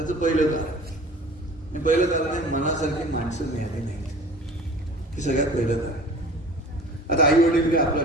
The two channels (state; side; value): normal; both; correlation 0.43